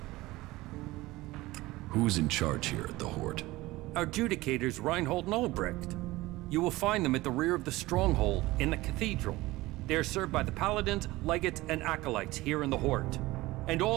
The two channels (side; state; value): left; quieter; 19.2 dB